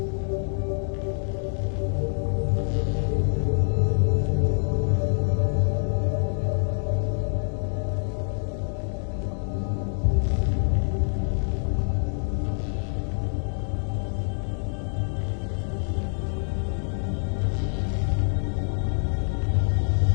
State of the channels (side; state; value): right; silent; digital silence